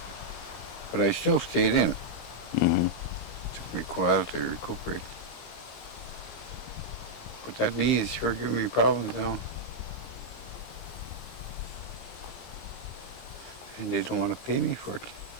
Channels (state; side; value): late; right; 17 ms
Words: But I still stayed in. Mm-hmm. Took me a while to recuperate. But that knee is sure giving me problems now. And they don't want to pay me for it.